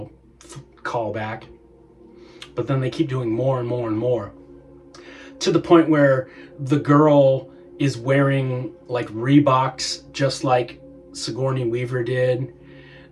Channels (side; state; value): both; identical; correlation 1.00